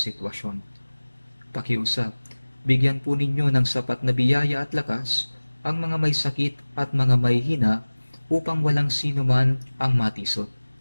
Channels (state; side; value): inverted; both; correlation -1.00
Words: Pakiusap, bigyan po ninyo ng sapat na biyaya at lakas ang mga may sakit at mga may hina upang walang sino man ang matisod.